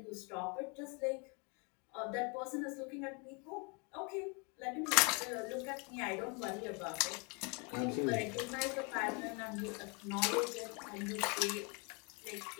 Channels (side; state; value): right; quieter; 32.0 dB